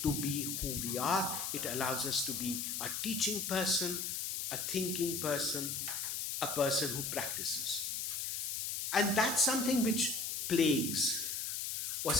to be who we are. It allows us to be a teaching person, a thinking person, a person who practices. And that's something which plagues or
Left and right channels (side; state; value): left; noise; hiss, 2 dB below the sound